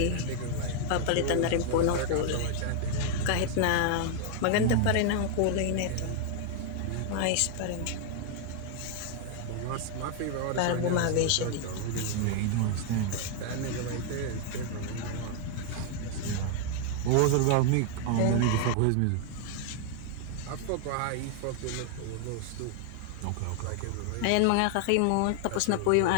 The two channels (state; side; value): different; both; correlation 0.00